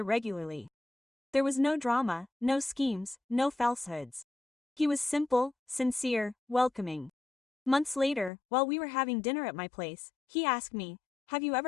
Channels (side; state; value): right; drops out; at 8.3 s